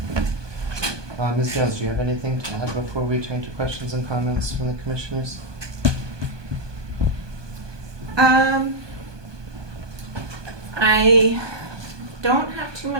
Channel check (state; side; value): late; left; 1.2 ms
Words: you. Ms. Jones, do you have anything to add before we turn to questions and comments from the commissioners? I don't have too